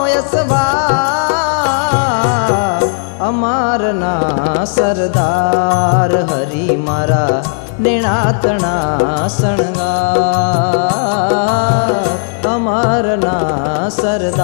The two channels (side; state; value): right; silent; digital silence